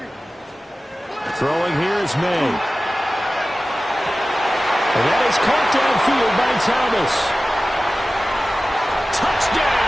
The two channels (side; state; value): both; normal; correlation 0.96